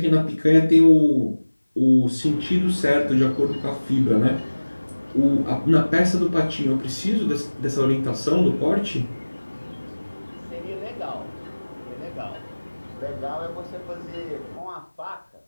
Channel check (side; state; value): both; inverted; correlation -1.00